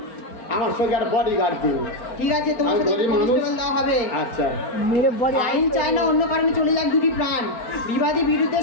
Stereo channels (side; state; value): right; late; 4.4 ms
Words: আমার সঙ্গে আর বডি গার্ড দিন। ঠিক আছে তোমার সাথে দেওয়া হবে। আচ্ছা আইন চায় না অন্য কারণে চলে যাক দুটি প্রাণ বিবাদী বিরুদ্ধে